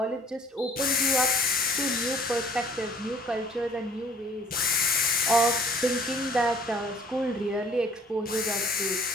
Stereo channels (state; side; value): normal; both; correlation 0.56